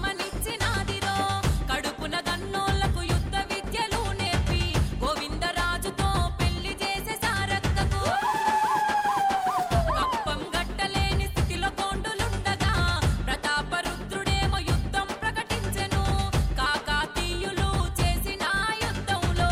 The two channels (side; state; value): both; identical; correlation 1.00